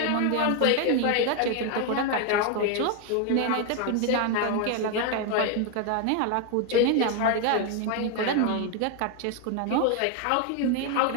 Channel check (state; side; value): different; both; correlation 0.01